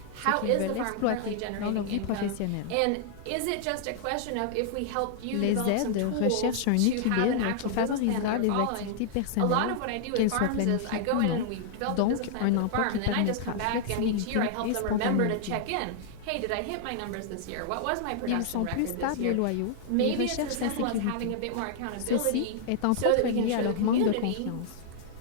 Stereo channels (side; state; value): both; different; correlation -0.01